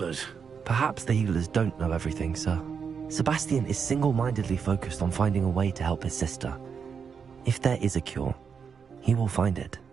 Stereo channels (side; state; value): left; quieter; 6.3 dB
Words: Perhaps the healers don't know everything, sir. Sebastian is single-mindedly focused on finding a way to help his sister. If there is a cure, he will find it.